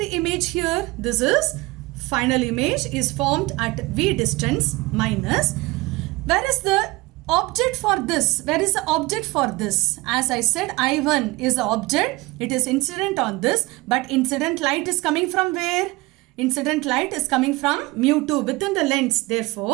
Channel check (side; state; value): left; quieter; 22.1 dB